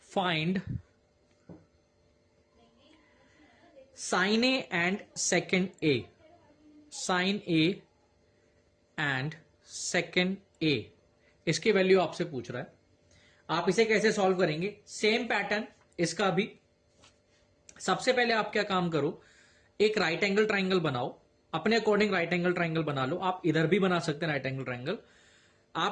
find sin A and second A. Sin A and second A, इसकी वैल्यू आपसे पूछ रहा है। आप इसे कैसे सॉल्व करेंगे? सेम पैटर्न इसका भी। सबसे पहले आप क्या काम करो, एक राइट एंगल ट्राइंगल बनाओ, अपने अकॉर्डिंग राइट एंगल ट्राइंगल बना लो। आप इधर भी बना सकते हैं राइट एंगल ट्राइंगल।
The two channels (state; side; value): identical; both; correlation 1.00